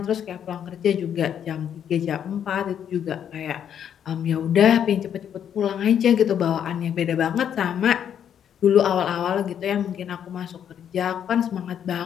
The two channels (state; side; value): quieter; right; 9.0 dB